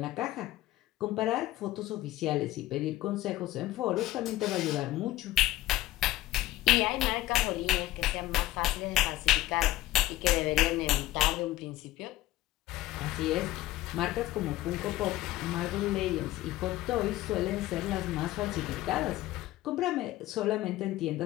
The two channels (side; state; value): right; quieter; 16.0 dB